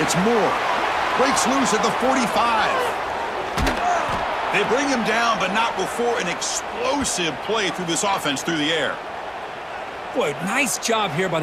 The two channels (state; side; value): identical; both; correlation 1.00